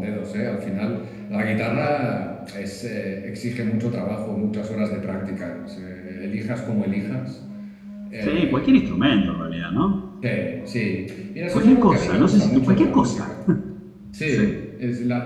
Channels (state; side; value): identical; both; correlation 1.00